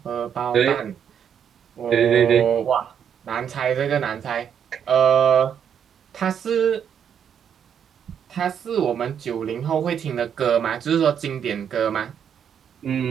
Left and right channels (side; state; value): left; quieter; 8.2 dB